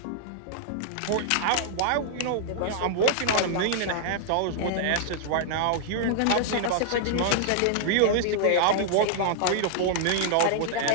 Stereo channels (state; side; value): different; both; correlation -0.01